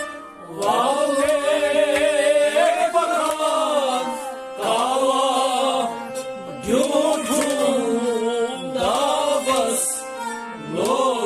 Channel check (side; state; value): both; identical; correlation 1.00